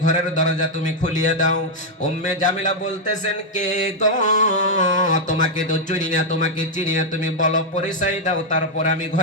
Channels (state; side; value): normal; both; correlation 0.00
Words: ঘরের দরজা তুমি খুলিয়ে দাও। উম্মে জামিলা বলতেছেন, কে গো? তোমাকে তো চিনি না, তোমাকে চিনি না, তুমি বলো, পরিচয় দাও, তারপর আমি